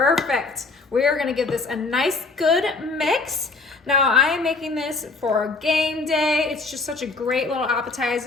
We are gonna give this a nice, good mix. Now, I am making this for game day. It's just such a great little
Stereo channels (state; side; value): quieter; right; 3.8 dB